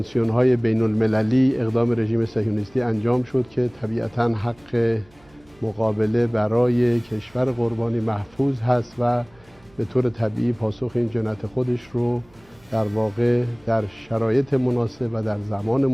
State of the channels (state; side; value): noise; right; hum, 29 dB below the sound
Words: بین المللی اقدام رژیم صهیونیستی انجام شد که طبیعتاً حق مقابله برای کشور قربانی محفوظ هست و به طور طبیعی پاسخ این جنایت خودش رو در واقع در شرایط مناسب و در زمان